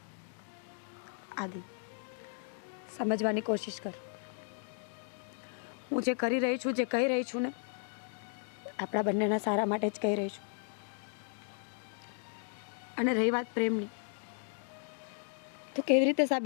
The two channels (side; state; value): right; silent; 54 dB below the other